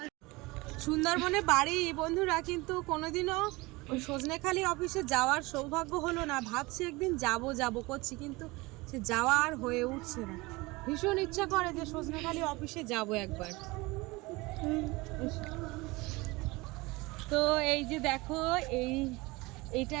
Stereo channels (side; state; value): left; quieter; 23.0 dB